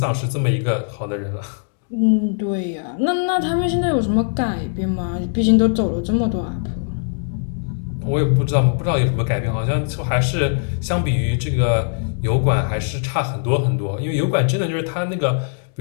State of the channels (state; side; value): silent; right; digital silence